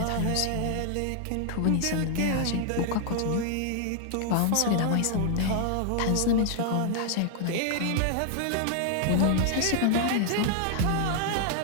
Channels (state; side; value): different; both; correlation 0.00